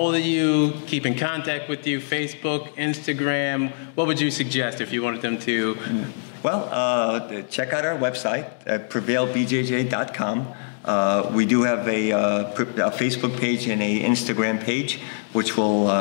of you, keep in contact with you? Facebook, Instagram? What would you suggest if you wanted them to? Well, check out our website at prevailbjj.com. We do have a Facebook page and a Instagram page, which we'll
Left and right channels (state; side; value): silent; right; digital silence